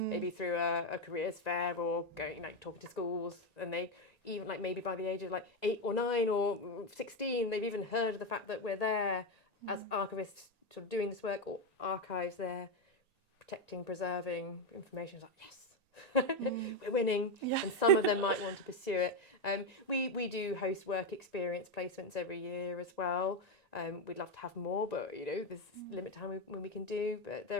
through a careers fair or going talking to schools, and they even maybe by the age of 8 or 9 or 16, they've even heard of the fact that we're there as archivists sort of doing this work, or archives there protecting, preserving information. It's yes, We're winning, Yeah. and some of them might want to pursue it. We do host work experience placements every year as well. We'd love to have more, but you know, there's a limit to when we can do. But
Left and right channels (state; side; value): late; left; 1.8 ms